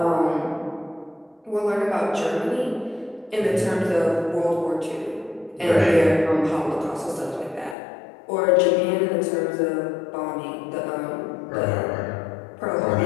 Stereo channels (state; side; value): drops out; right; at 7.8 s